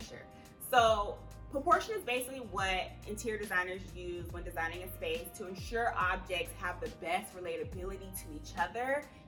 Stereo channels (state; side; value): identical; both; correlation 1.00